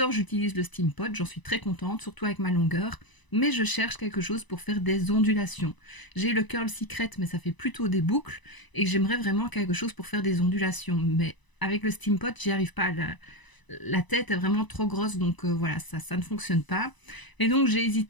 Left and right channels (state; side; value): late; right; 1.0 ms